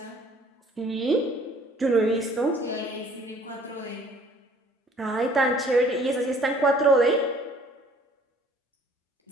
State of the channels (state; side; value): normal; both; correlation 0.56